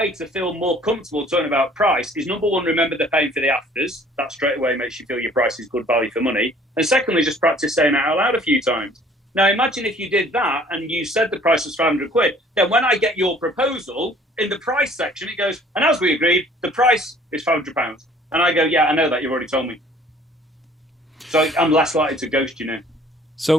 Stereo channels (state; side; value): normal; both; correlation 0.54